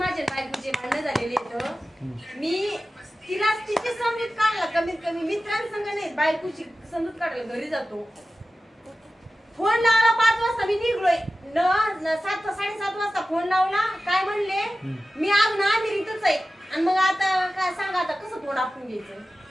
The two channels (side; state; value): both; normal; correlation 0.95